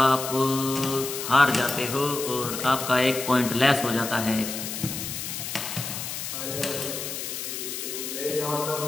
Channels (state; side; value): noise; left; hiss, 5 dB below the sound